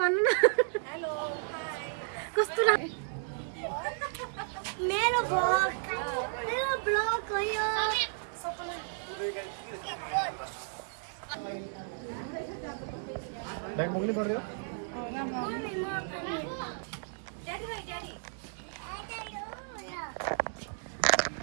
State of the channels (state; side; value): silent; left; digital silence